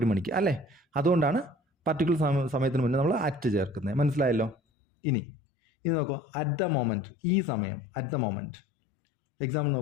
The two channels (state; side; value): drops out; right; at 4.5 s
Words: മണിക്ക് അല്ലേ. അതുകൊണ്ടാണ് പർട്ടിക്കുലർ സമയത്തിന് മുന്നേ നമ്മൾ അറ്റ് ചേർക്കുന്നത്. മനസ്സിലായല്ലോ? ഇനി നോക്കൂ, അറ്റ് ദ മൊമെൻറ്റ്. ഈ സമയം അറ്റ് ദ മൊമെൻറ്റ്. എക്സാമ്പിൾ